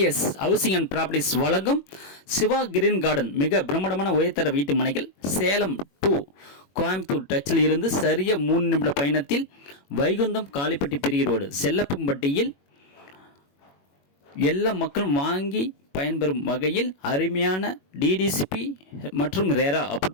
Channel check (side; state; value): right; late; 21 ms